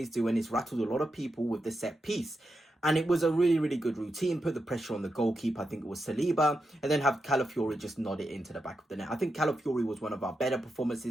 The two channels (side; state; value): both; normal; correlation 0.87